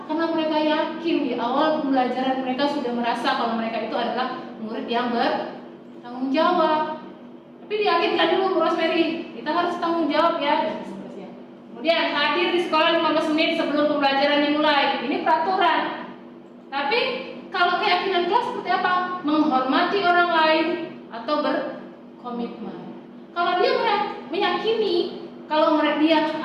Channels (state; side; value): identical; both; correlation 1.00